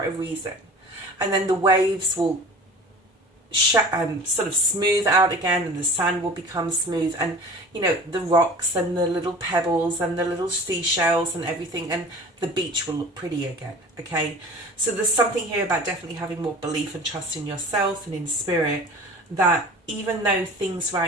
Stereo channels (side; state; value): both; normal; correlation 0.41